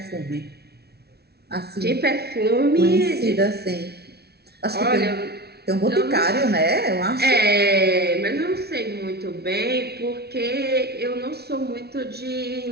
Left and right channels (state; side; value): late; left; 0.47 ms